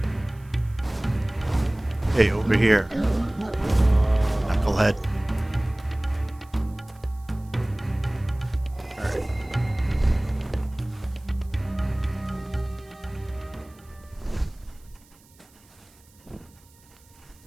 Hey, over here. Knucklehead. Alright.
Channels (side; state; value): right; noise; hiss, 29 dB below the sound